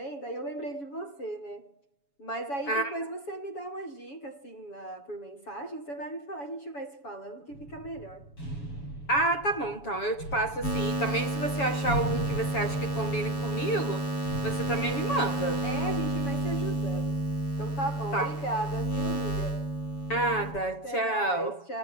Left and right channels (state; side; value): late; right; 7.1 ms